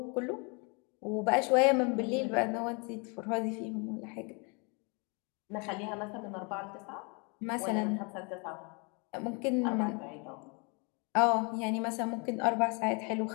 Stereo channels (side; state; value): right; quieter; 32.9 dB